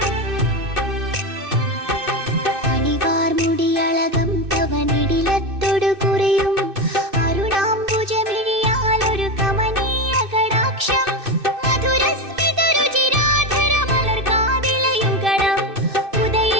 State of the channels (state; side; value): late; left; 2.6 ms